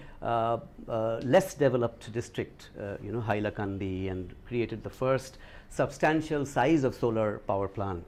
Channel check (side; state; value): both; identical; correlation 1.00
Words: less developed district, Hailakandi, and created the first substantial size of solar power